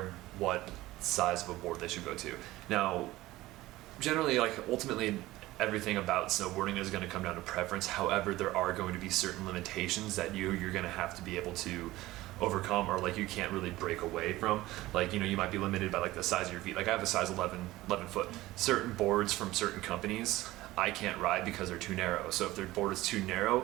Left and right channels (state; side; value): quieter; left; 17.5 dB